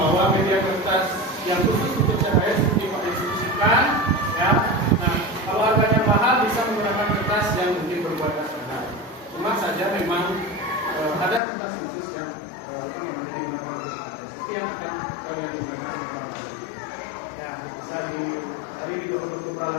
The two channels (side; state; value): right; drops out; at 11.4 s